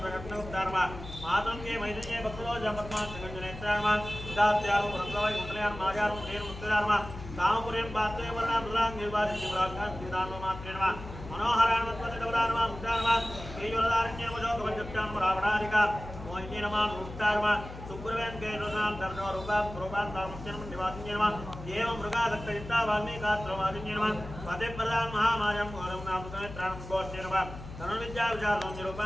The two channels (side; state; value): left; noise; hum, 12 dB below the sound